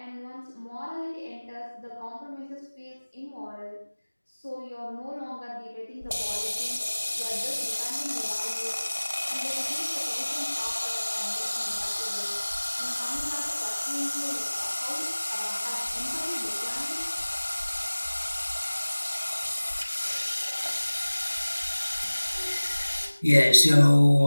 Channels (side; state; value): both; inverted; correlation -1.00